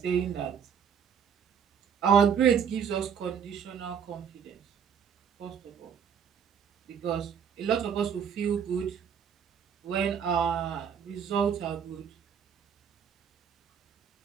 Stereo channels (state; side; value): quieter; left; 7.6 dB